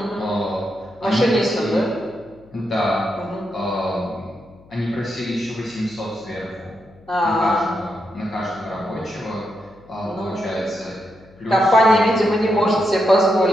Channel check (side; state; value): left; noise; hum, 26 dB below the sound